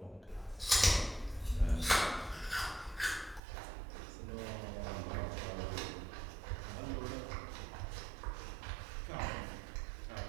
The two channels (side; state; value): left; drops out; at 3.4 s